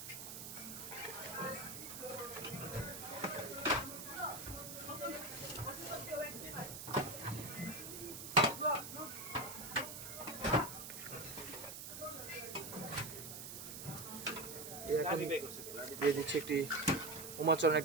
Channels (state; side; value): noise; right; hiss, 8 dB below the sound